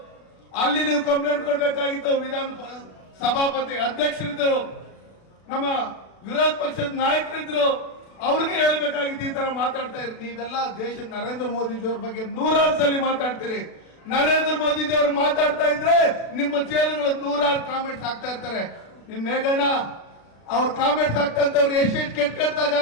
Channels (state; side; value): late; right; 36 ms